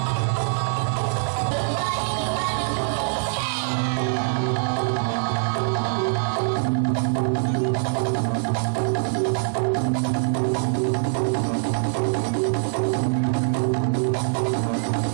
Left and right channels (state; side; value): silent; left; digital silence